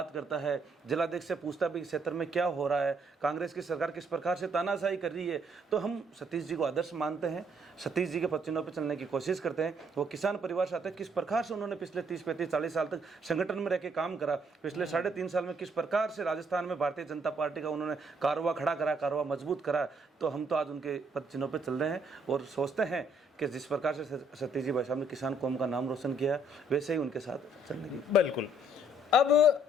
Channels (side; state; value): both; normal; correlation 0.68